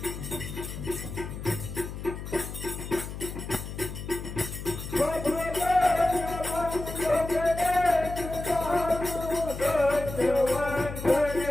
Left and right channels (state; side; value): noise; left; hum, 8 dB below the sound